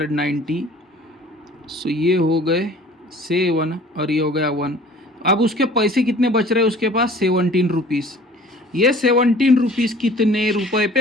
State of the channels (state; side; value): normal; both; correlation 0.48